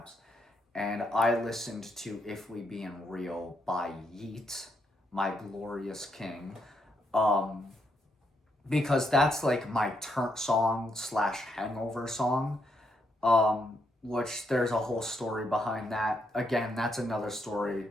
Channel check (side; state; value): both; normal; correlation 0.78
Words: And I listened to If We Being Real by Yeat, My Glorious King, because that's like my turn song slash hangover song, which there's a whole story behind that. Again, that's another story